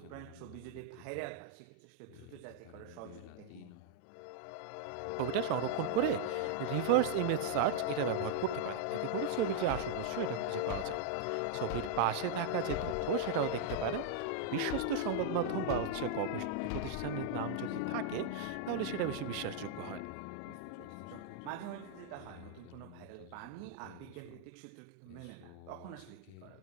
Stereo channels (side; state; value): both; different; correlation -0.01